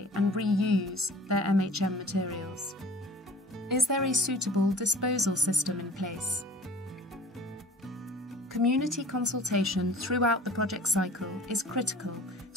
and reuse their MHM materials. Is there a suitable disposal system in place? community consultation throughout the project cycle is critical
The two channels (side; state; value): both; normal; correlation 0.46